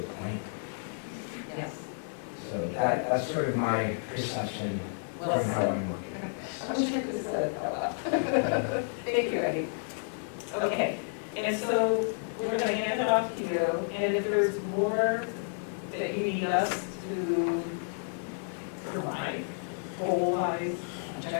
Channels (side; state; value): right; silent; digital silence